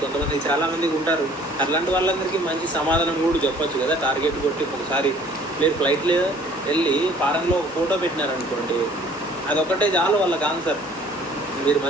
కొంతమంది, చాలామందికి ఉంటారు. అట్లాంటి వాళ్ళందరికీ మంచి సమాధానం కూడా చెప్పొచ్చు కదా. టార్గెట్ కొట్టి ఒకసారి మీరు ఫ్లైట్లో వెళ్ళి ఫారెన్లో ఒక ఫోటో పెట్టినారనుకోండి, అదొక్కటే చాలు వాళ్ళకి ఆన్సర్. మీరు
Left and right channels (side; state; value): both; normal; correlation 0.54